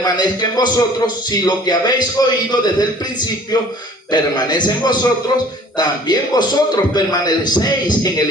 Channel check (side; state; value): both; normal; correlation 0.51